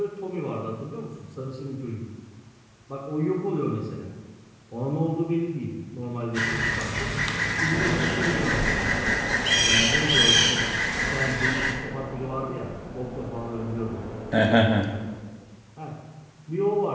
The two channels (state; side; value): identical; both; correlation 1.00